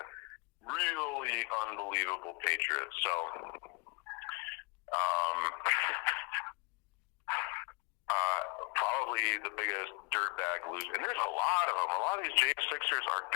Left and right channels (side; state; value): right; quieter; 30.1 dB